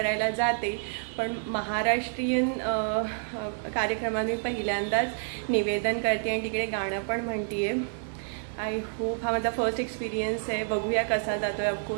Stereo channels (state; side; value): silent; left; digital silence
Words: जाते. पण महाराष्ट्रीयन कार्यक्रमात मी पहिल्यांदाच निवेदन करते आणि तिकडे गाणं पण म्हणते आहे. आय होप हा माझा फर्स्ट एक्सपिरियन्स आहे. बघूया कसा जातो आहे.